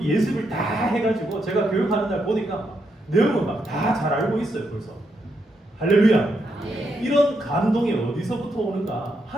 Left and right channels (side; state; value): both; normal; correlation 0.80